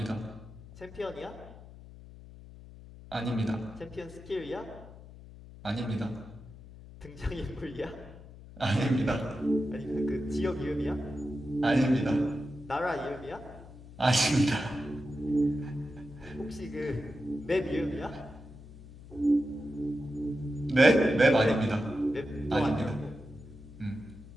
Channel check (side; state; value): left; noise; hum, 17 dB below the sound